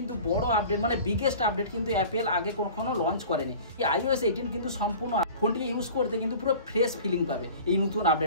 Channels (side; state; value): both; inverted; correlation -0.41